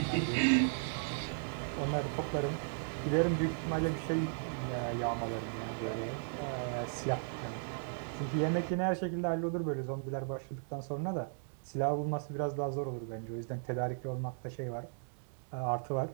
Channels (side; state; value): left; silent; digital silence